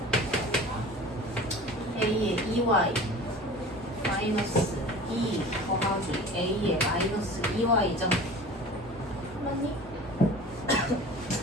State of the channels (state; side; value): normal; both; correlation 0.40